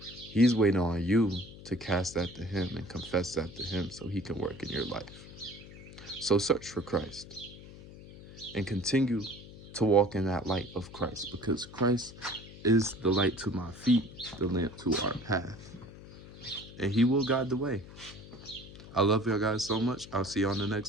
He's waiting on you to cast that to him and confess that to him, so he can work in your life. So search for Christ and continue to walk in that light of Christ, because Christ is the light to my feet, the lamp to our path, and he will guide the way. I love y'all guys so much. I'll see you on the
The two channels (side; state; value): left; noise; hum, 17 dB below the sound